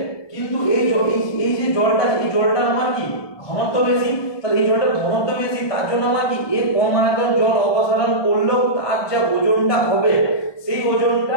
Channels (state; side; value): late; right; 1.2 ms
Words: কিন্তু এই যে জলটা আমার কি ঘনত্ব বেশি, তাহলে এই জলটার ঘনত্ব বেশি, তার জন্য আমার কি এ কম আয়তন জল অপসারণ করলেও তার যা ওজনটা হবে সেই